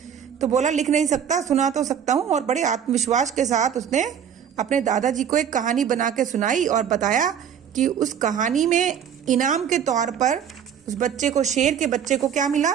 तो बोला, लिख नहीं सकता, सुना तो सकता हूँ। और बड़े आत्मविश्वास के साथ उसने अपने दादाजी को एक कहानी बना के सुनाई और बताया कि उस कहानी में इनाम के तौर पर उस बच्चे को, शेर के बच्चे को क्या मिला?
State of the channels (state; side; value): quieter; left; 8.4 dB